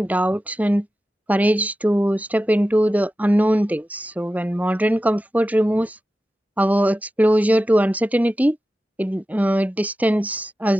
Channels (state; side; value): normal; both; correlation 0.93